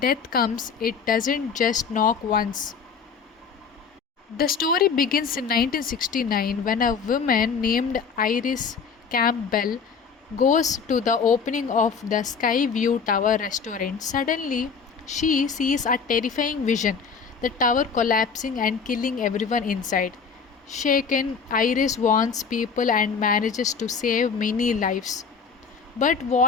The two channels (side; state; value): right; quieter; 5.9 dB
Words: comes, it doesn't just knock once. The story begins in 1969 when a woman named Iris Campbell goes to the opening of the Sky View Tower restaurant. Suddenly, she sees a terrifying vision, the tower collapsing and killing everyone inside. Shaken, Iris warns people and manages to save many lives. But